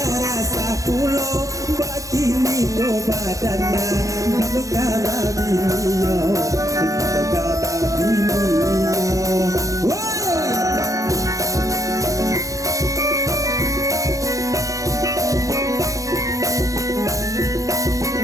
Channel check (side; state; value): left; late; 0.16 ms